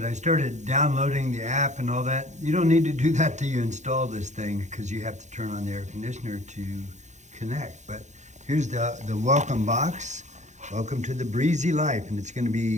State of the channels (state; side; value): late; left; 0.34 ms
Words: I started downloading the app and all that. You don't need to do that till you install this thing because you have to turn on the air conditioner to connect. But here's the welcome box. Welcome to the breezy life, and it's going to